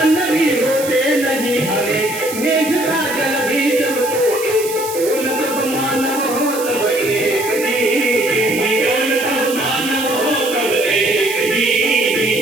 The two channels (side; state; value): right; noise; hiss, 10 dB below the sound